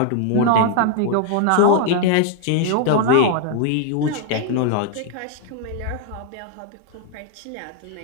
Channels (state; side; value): different; both; correlation 0.00